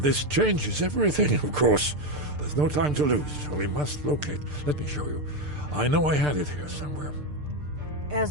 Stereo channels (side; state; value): left; late; 6.7 ms